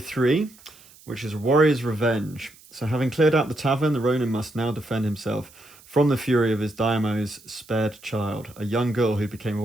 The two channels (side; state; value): right; noise; hiss, 24 dB below the sound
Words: which is Warrior's Revenge. So having cleared out the tavern, the Ronin must now defend himself from the fury of his Daimo's spared child, a young girl who became a